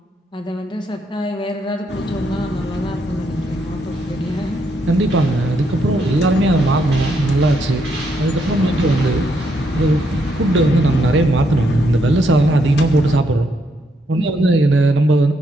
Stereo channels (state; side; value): normal; both; correlation 0.76